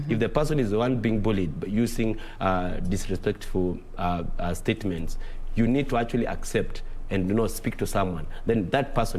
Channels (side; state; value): both; identical; correlation 1.00